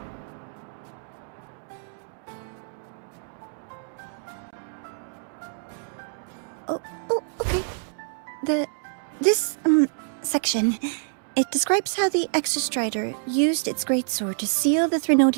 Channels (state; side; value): silent; left; digital silence